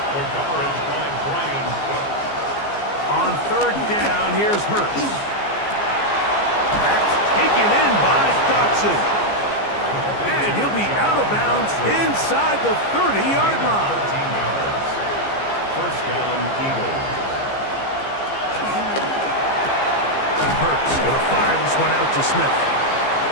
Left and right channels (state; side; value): late; right; 15 ms